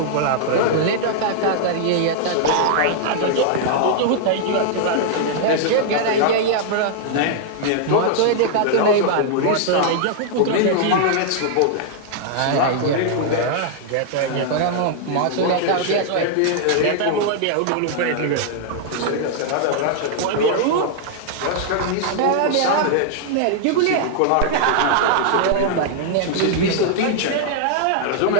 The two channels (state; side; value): different; both; correlation -0.01